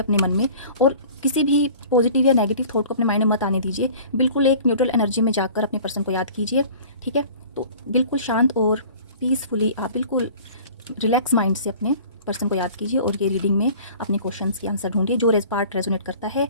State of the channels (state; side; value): inverted; both; correlation -0.45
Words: मन में, और किसी भी पॉजिटिव या नेगेटिव थॉट को अपने माइंड में मत आने दीजिए। बिल्कुल एक न्यूट्रल एनर्जी में जाकर अपने पर्सन को याद कीजिए, ठीक है। तो बिल्कुल शांत और पीसफुली आप बिल्कुल रिलैक्स माइंड से अपने पर्सन को याद कीजिए और ये रीडिंग में अपने क्वेश्चंस के आंसर ढूंढिए। जो पार्ट रेजोनेट करता है